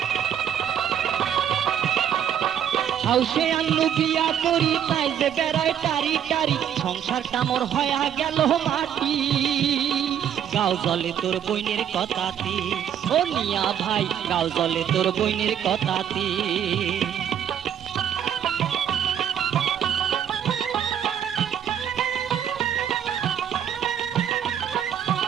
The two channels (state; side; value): quieter; left; 9.4 dB